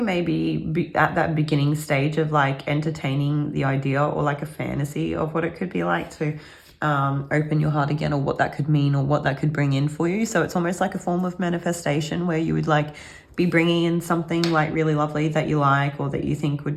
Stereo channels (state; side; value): identical; both; correlation 1.00